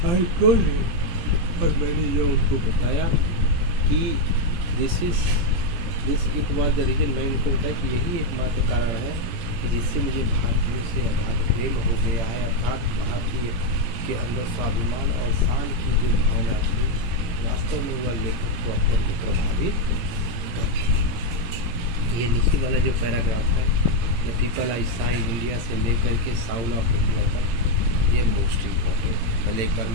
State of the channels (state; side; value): late; left; 18 ms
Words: आई टोल्ड और मैंने ये उनको बताया कि this it was the reason. मैं उनको बताया कि यही एकमात्र कारण है कि जिससे मुझे भारतीयों से अगाध प्रेम हो गया है, अर्थात भारतीय के अंदर स्वाभिमान और शान की जो भावना थी, वास्तव में वह लेखक को अत्यंत प्रभावित करती है। ये नीचे वाला जो पैराग्राफ है, the people I saw in India से लेकर के साउल ऑफ इंडिया तक, ये मोस्ट इम्पॉर्टेंट। पहले एक बार